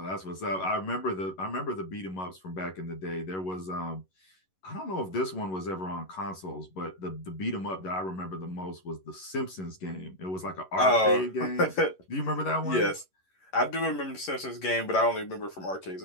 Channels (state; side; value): late; right; 11 ms